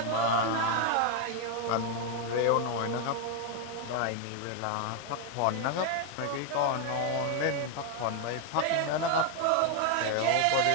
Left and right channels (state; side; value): different; both; correlation 0.01